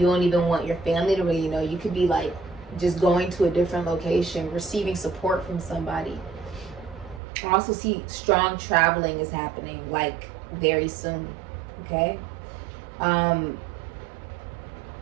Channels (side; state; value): left; drops out; at 7.2 s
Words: don't even want your family to really know. You could be like just going to a different location, receiving support from somebody. I also see strong traveling is happening like very soon. Okay,